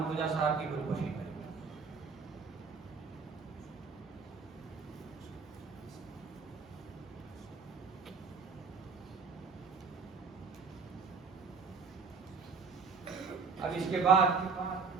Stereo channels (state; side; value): quieter; left; 5.1 dB